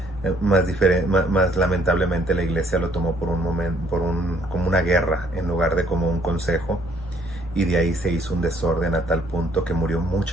Más lamentablemente la iglesia lo tomó por un momento, como una guerra en lugar de como un consejo, y de ahí se hizo un desorden a tal punto que murió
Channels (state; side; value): normal; both; correlation 0.64